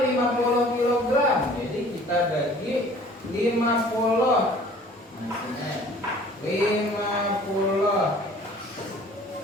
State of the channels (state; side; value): normal; both; correlation 0.51